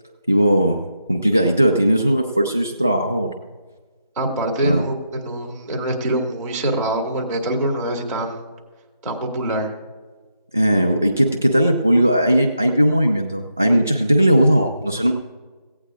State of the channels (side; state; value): both; inverted; correlation -0.82